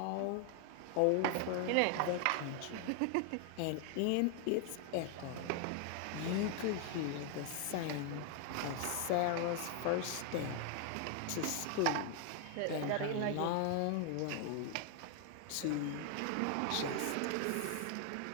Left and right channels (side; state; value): both; different; correlation 0.00